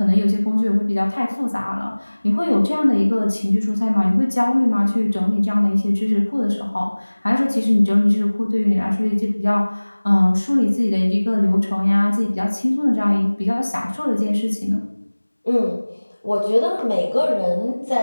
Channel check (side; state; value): both; inverted; correlation -1.00